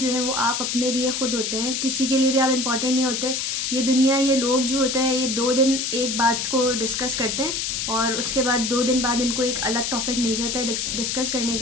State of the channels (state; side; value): noise; left; hiss, 1 dB below the sound